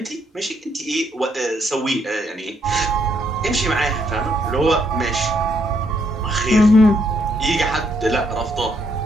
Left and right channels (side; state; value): both; normal; correlation 0.73